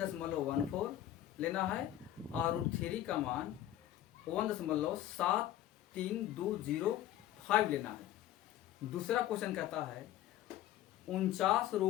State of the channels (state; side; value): quieter; right; 12.8 dB